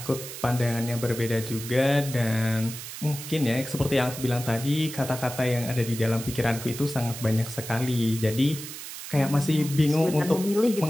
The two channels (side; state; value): right; noise; hiss, 10 dB below the sound